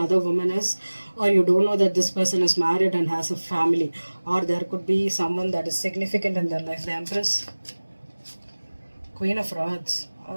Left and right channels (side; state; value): both; inverted; correlation -1.00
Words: woman is, or you don't know that this person is married and has a family, or there could be someone that is significant in their life. The Empress. Queen of Rods.